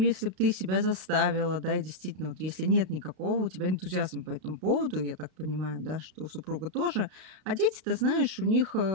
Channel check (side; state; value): left; late; 32 ms